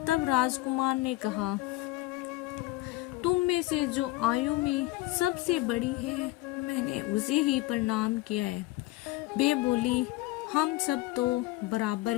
तब राजकुमार ने कहा, तुम में से जो आयु में सबसे बड़ी है, मैंने उसे ही प्रणाम किया है। वे बोली, हम सब तो बराबर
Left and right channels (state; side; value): quieter; right; 18.8 dB